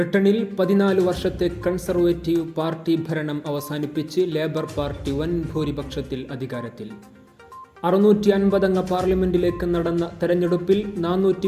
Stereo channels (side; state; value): both; identical; correlation 1.00